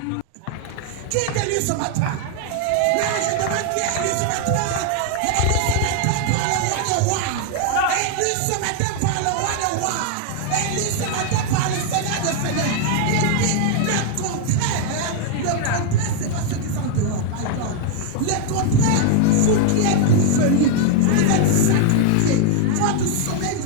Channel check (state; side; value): different; both; correlation 0.00